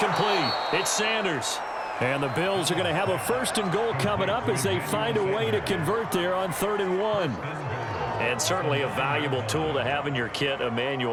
It's Sanders. And the Bills are going to have a 1st and goal coming up as they find a way to convert there on 3rd and 1. And certainly a valuable tool to have in your kit,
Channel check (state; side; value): identical; both; correlation 1.00